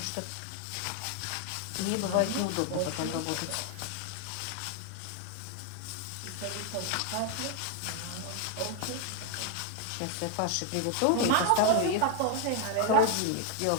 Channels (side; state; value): both; different; correlation 0.01